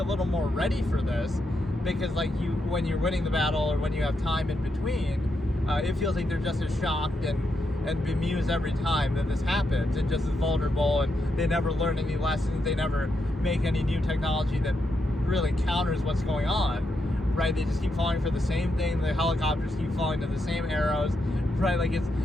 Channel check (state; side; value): normal; both; correlation 0.83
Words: little more ready for this, because like when you're winning the battle or when you have time in between, it feels like they're just as shocked and bemused every time that this happens, and just as vulnerable, and they never learn any lessons, they never make any new technology that really counters what's going on. Right, they just keep falling for the same thing. The helicopters keep falling to the same arrows. Right, like it's